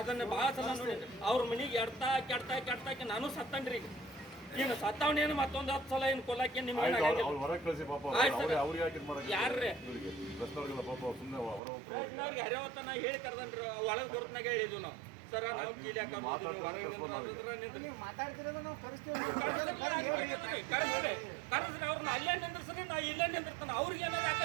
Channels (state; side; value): drops out; left; at 11.6 s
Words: ಭಾಳ ಸಲ ನೋಡಿ ಅವ್ರ ಮನೆಗೆ ಕೆಡ್ತಾಕಿ ನಾನು ಸತ್ತನ್ರಿ. ಈಗ ಸತ್ತವನೇನು ಮತ್ತೊಂದು 10 ಸಲ ಏನು ಕೊಲ್ಲಕ್ಕೆ ನಿಮ್ಗೆ ಯಾರ್ರಿ ಹರಿವತ್ತ ನಾ ಹೇಳಿ ಕರ್ದನ್ರಿ, ಒಳಗೆ ಬರ್ತನಾಗ ಹೇಳಿದ್ವು ನಾವು ಸರ ನಾವು ಕೀಲಿ ಹಾಕೋದು ಹೊರಗೆ ಕರೆಸ್ರಿ ಅವ್ರನ್ನ ಅಲ್ಲೇ ನಿಂದ್ರಿಸ್ರಿ, ನಾ ಇಲ್ಲೇ ನಿಂದಿರ್ತಾನೆ. ಅವ್ರಿಗೆ ಏನಾದ್ರು